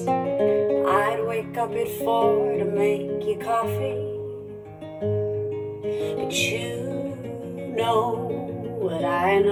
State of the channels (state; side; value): identical; both; correlation 1.00